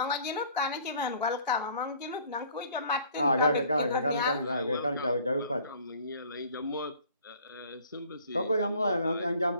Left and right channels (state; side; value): inverted; both; correlation -0.54